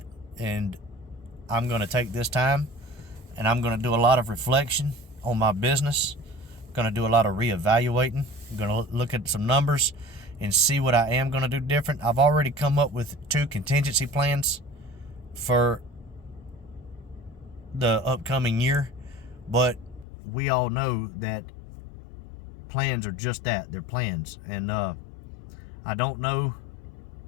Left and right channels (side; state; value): right; drops out; at 20.1 s